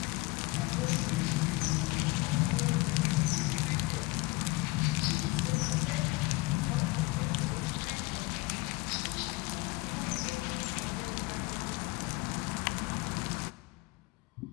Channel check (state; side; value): quieter; right; 23.0 dB